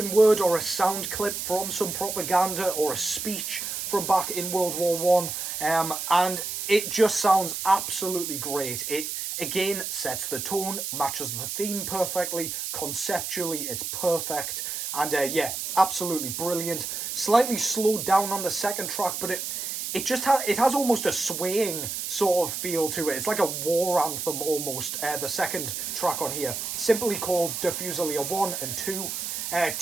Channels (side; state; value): right; noise; hiss, 4 dB below the sound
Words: word or a sound clip from some propaganda or a speech from back in World War One, and it just sounds absolutely great. It again sets the tone, matches the theme perfectly, conceptually it's perfect, and yeah, absolutely brilliant. Slightly slowed down on the second track, but it just has almost a swaying sort of feel to it. It's like a war anthem almost. The second track on here, simply called Diffuser 1 and 2.